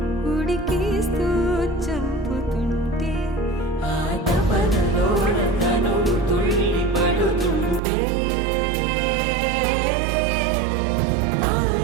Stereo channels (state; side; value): drops out; left; at 7.8 s